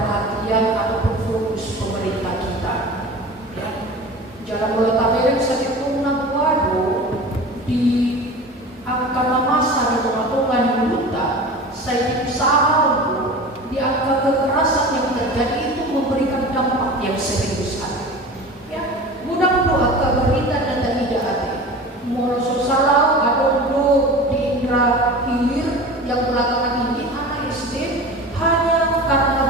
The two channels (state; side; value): normal; both; correlation 0.35